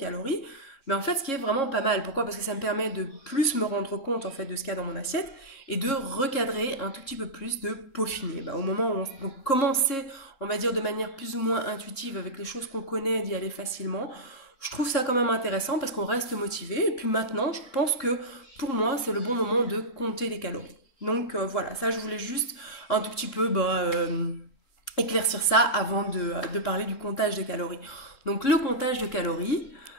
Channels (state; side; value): late; right; 3.7 ms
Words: Mais en fait, ce qui est vraiment pas mal. Pourquoi? Parce que ça me permet de plus me rendre compte en fait de ce qu'il y a dans mon assiette et de recadrer un tout petit peu plus, de peaufiner. Au moment où on commencer, on va dire de manière plus ou moins intuitive avec les choses qu'on connaît, d'y aller facilement. Je trouve ça quand même intéressant parce qu'on reste motivé. Et puis maintenant, je pense que pour moi, c'est le bon moment de compter les calories. Donc voilà, ça je voulais juste un tout petit peu éclaircir ça avant de parler du comptage de calories. Donc le comptage de calories,